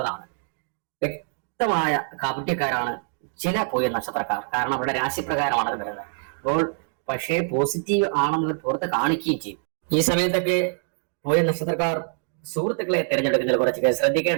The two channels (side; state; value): left; silent; digital silence